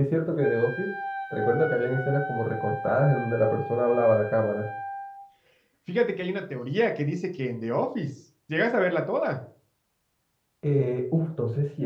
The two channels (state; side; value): identical; both; correlation 1.00